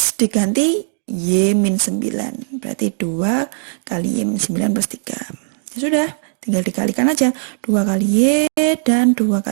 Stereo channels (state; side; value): silent; left; digital silence